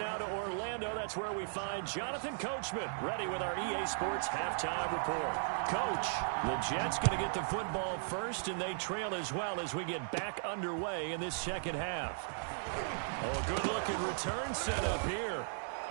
to Orlando, that's where we find Jonathan Coachman, ready with our EA Sports halftime report. Coach, the Jets going to get the football first, and they trail as well as we get back underway in this second half. Oh, a good-looking return set up here.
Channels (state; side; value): silent; left; digital silence